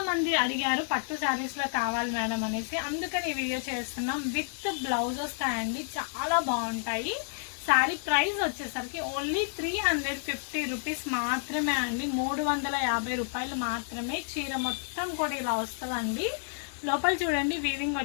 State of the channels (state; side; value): silent; right; digital silence